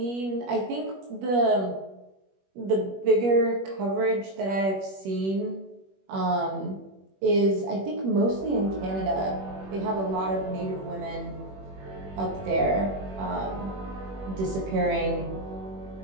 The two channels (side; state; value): left; late; 21 ms